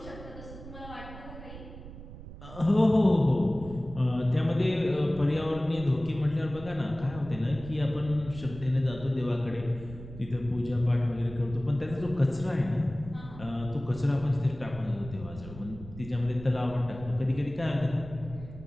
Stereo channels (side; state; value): right; noise; rumble, 14 dB below the sound